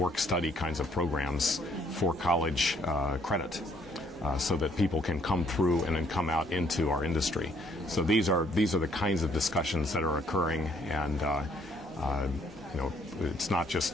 kinds of programs for college credit. So that people can come through and then come out into our industry. So these are the kinds of discussions that are occurring, and it's not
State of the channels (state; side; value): normal; both; correlation 0.66